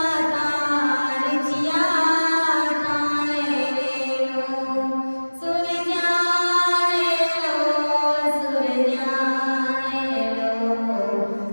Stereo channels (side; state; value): both; inverted; correlation -1.00